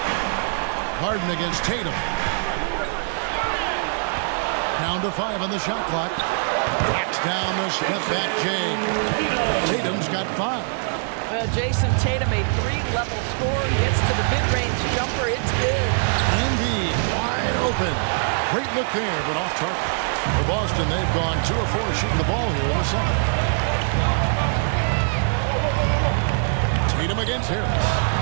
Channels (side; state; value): left; silent; digital silence